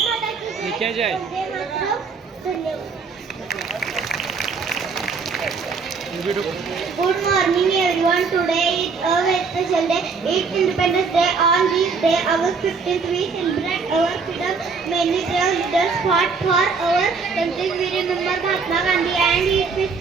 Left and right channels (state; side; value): quieter; left; 5.0 dB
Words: माता की जय. वंदे मातरम. धन्यवाद. Good morning everyone. Today is a very special day. It's Independence Day. On this day, August 15th, we celebrate our freedom. Many brave leaders fought for our country. We remember Mahatma Gandhi and his